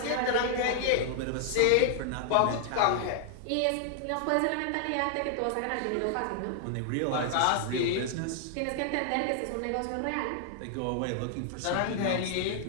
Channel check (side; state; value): both; different; correlation 0.00